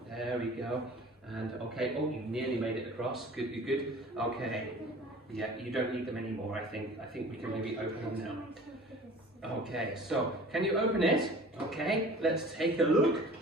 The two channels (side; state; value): both; normal; correlation 0.44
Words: There we go. And okay, oh, you nearly made it across. Good, good, good. Okay. Yeah, you don't need them anymore, I think. I think we can maybe open them now. Okay, so can you open it? Okay, let's take a look.